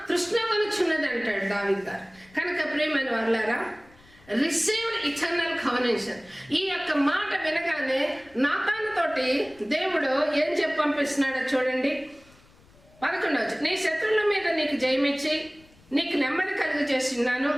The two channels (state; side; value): noise; left; rumble, 28 dB below the sound